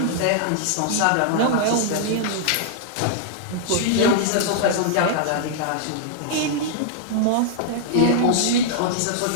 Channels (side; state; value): both; different; correlation -0.01